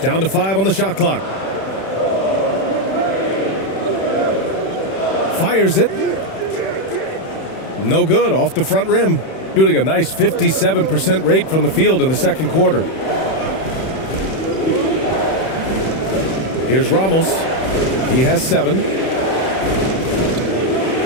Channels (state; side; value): late; right; 31 ms